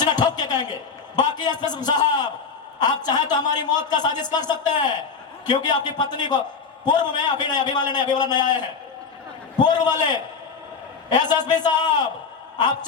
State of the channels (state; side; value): quieter; right; 5.4 dB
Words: ठोक के कहेंगे। बाकी एसपी साहब, आप चाहे तो हमारी मौत का साजिश कर सकते हैं, क्योंकि आपकी पत्नी को पूर्व में अभी वाला नया आए हैं, पूर्व वाले एसएसपी साहब, आप